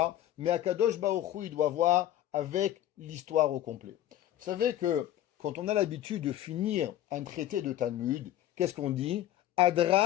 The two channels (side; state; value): right; quieter; 12.6 dB